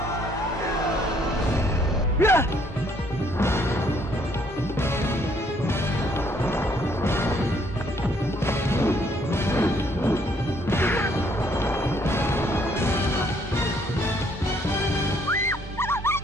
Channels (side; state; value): both; normal; correlation 0.66